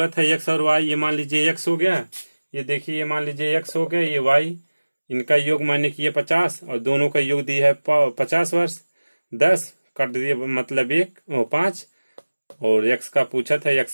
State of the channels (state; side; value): inverted; both; correlation -1.00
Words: था एक्स और वाई, ये मान लीजिए एक्स हो गया, ये देखिए ये मान लीजिए एक्स हो गया, ये वाई, इनका योग माने कि ये 50 और दोनों का योग दिया है 50 वर्ष। 10 काट दिए मतलब 5, और एक्स का पूछा था, एक्स